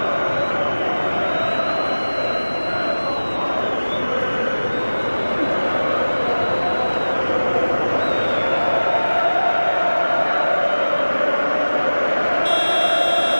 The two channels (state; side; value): inverted; both; correlation -1.00